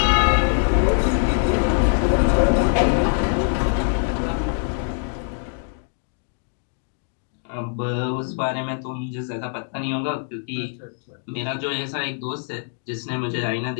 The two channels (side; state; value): right; silent; digital silence